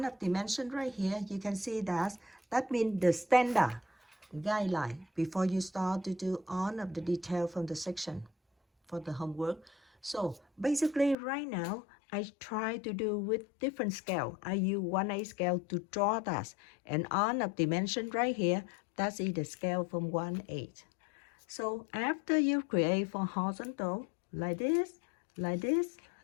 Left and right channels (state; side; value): drops out; right; at 11.2 s